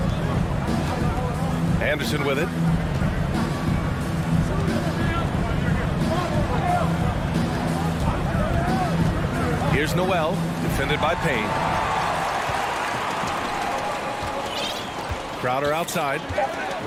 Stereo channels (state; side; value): identical; both; correlation 1.00